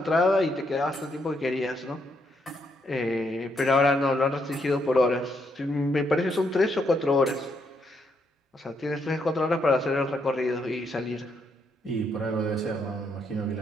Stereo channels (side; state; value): both; normal; correlation 0.76